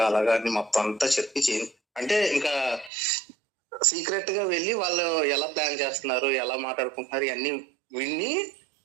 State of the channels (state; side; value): drops out; left; at 2.9 s